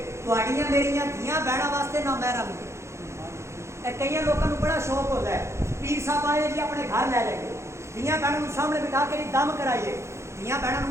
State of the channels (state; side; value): late; left; 0.13 ms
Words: تہاڈیاں میریاں دھیاں بہناں واسطے نہ محرم. کئی لوگوں کو بڑا شوق ہوتا ہے, پیر صاحب آئے جی اپنے گھر لے جائیے, دھیاں بہنوں سامنے بٹھا کے دم کرائیے. دھیاں